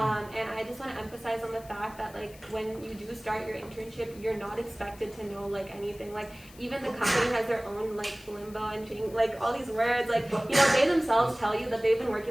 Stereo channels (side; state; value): left; noise; hiss, 22 dB below the sound